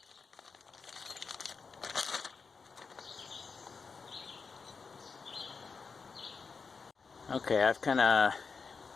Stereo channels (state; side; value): quieter; right; 5.1 dB